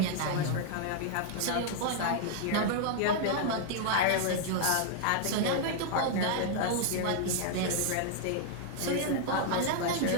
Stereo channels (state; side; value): different; both; correlation 0.00